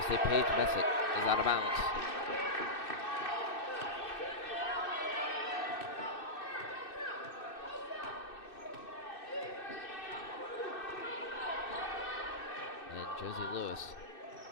say Paige Messick is out of bounds. Josie Lewis,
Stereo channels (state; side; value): late; right; 2.6 ms